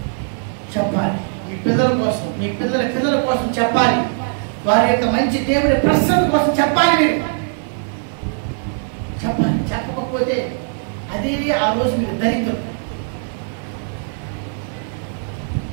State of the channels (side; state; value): left; silent; digital silence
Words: చెప్పాలి మీ పిల్లల కోసం, మీ పిల్లల కోసం చెప్పాలి. వారి యొక్క మంచి దేవుడి ప్రసన్న కోసం చెప్పాలి. మీరు చెప్పాలి. చెప్పకపోతే అదే ఆ రోజు మీరు దరిద్రం.